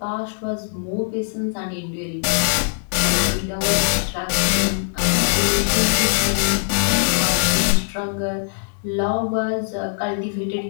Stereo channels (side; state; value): right; silent; digital silence